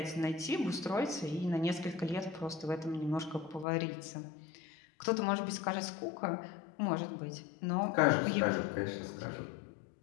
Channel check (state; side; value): drops out; right; at 3.7 s